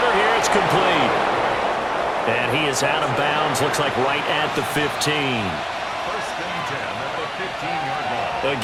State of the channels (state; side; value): identical; both; correlation 1.00